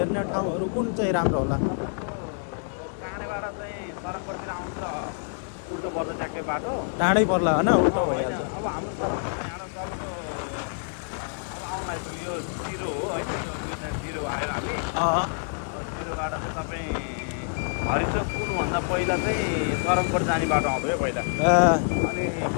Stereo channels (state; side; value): silent; right; digital silence